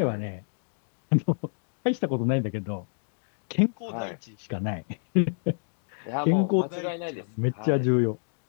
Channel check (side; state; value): right; silent; digital silence